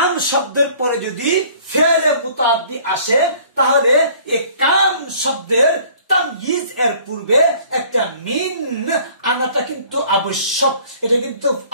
শব্দের পরে যদি ফেলে মুতাআদ্দি আসে, তাহলে এই কাম শব্দের তাময়িজ এর পূর্বে একটা মিন আনাটা কিন্তু আবশ্যক, এটা কিন্তু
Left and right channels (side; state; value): both; inverted; correlation -0.53